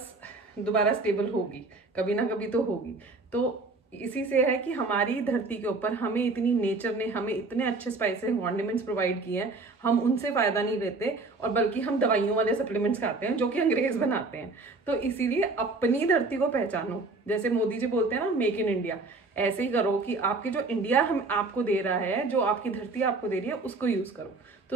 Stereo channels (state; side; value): quieter; left; 3.6 dB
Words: दोबारा स्टेबल होगी, कभी ना कभी तो होगी। तो इसी से है कि हमारी धरती के ऊपर हमें इतनी नेचर ने हमें इतने अच्छे स्पाइसेस कॉन्डिमेंट्स प्रोवाइड किए हैं, हम उनसे फायदा नहीं लेते और बल्कि हम दवाइयों वाले सप्लीमेंट्स खाते हैं जो कि अंग्रेज बनाते हैं। तो इसीलिए अपनी धरती को पहचानो। जैसे मोदी जी बोलते हैं ना, मेक इन इंडिया, ऐसे ही करो कि आपकी जो इंडिया हम आपको दे रहा है, जो आपकी धरती आपको दे रही है, उसको यूज करो।